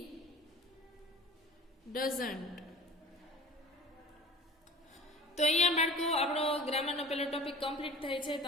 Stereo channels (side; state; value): both; normal; correlation 0.41